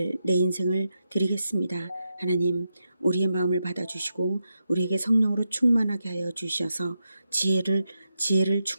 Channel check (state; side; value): inverted; both; correlation -0.87